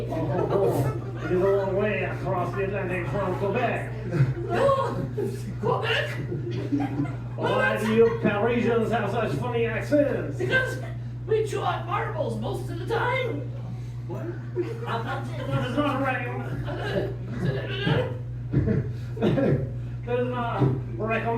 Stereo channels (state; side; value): identical; both; correlation 1.00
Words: It is a long way across the Atlantic from Quebec. Oh, Quebec? Why do you Parisians have such funny accents? Because we chew on marbles most of the time. What? That is not right. That is not